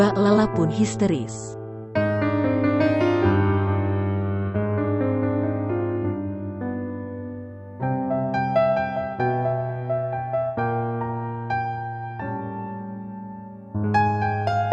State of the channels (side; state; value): both; identical; correlation 1.00